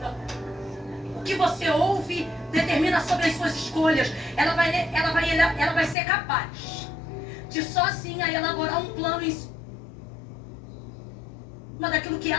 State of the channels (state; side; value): drops out; right; at 6.0 s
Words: O que você ouve determina sobre as suas escolhas. Ela vai ser capaz de sozinha elaborar um plano em cima daquilo que